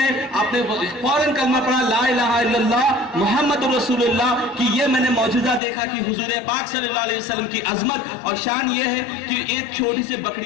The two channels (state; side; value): drops out; right; at 5.6 s